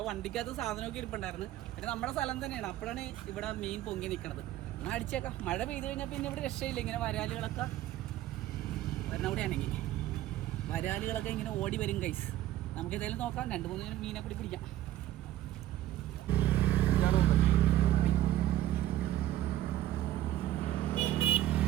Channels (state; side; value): quieter; left; 13.8 dB